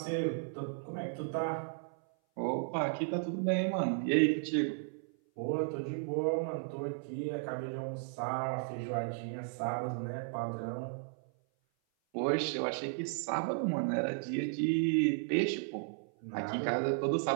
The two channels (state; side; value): silent; left; 55 dB below the other